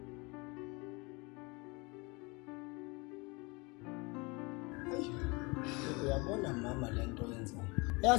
uyabona mama lento yenzayo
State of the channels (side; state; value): right; quieter; 27.5 dB